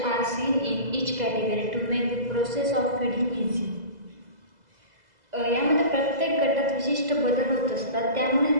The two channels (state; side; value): late; left; 2.0 ms